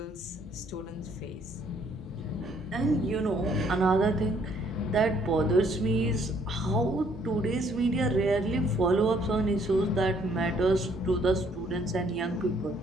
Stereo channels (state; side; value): normal; both; correlation 0.65